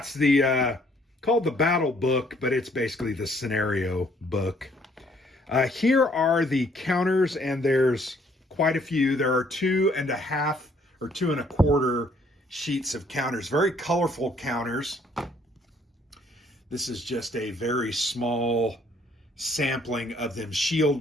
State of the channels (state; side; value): normal; both; correlation 0.63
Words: the called the battle book, but it's basically the scenario book. Here are the counters, and there's quite a few. There are 2.5 or 2.25 sheets of counters, very colorful counters. This is just a very small sampling of them.